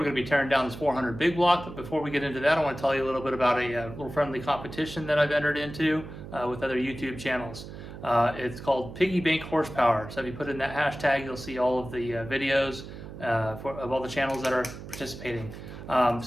going to be tearing down this 400 big block, but before we get into that, I want to tell you a little bit about a little friendly competition that I've entered into with other YouTube channels. It's called Piggy Bank Horsepower. So if you put in that hashtag, you'll see all of the videos of all the channels that are participating.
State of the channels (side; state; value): right; noise; hum, 12 dB below the sound